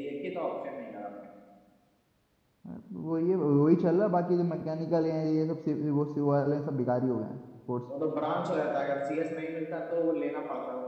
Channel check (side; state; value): both; identical; correlation 1.00